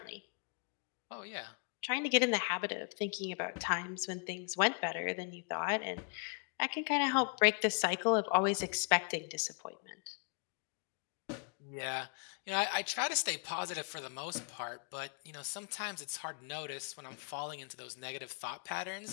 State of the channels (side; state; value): right; quieter; 37.9 dB